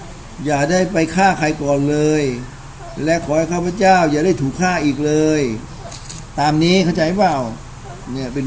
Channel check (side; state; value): both; identical; correlation 1.00